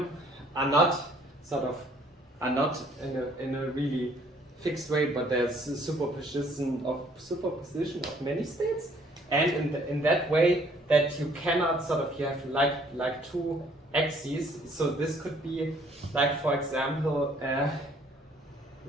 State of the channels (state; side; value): normal; both; correlation 0.61